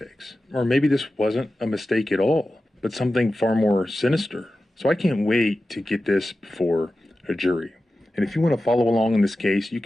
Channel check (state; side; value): normal; both; correlation 0.93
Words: Or maybe this wasn't a mistake at all, but something far more sinister. So I can't wait to get this before a jury. And if you want to follow along in this case, you